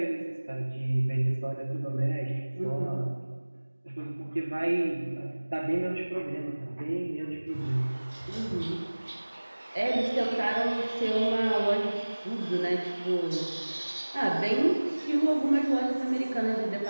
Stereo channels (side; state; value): both; inverted; correlation -1.00